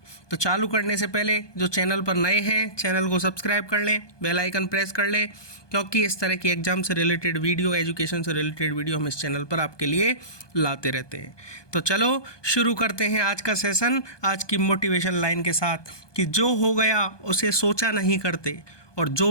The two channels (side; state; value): right; late; 1.2 ms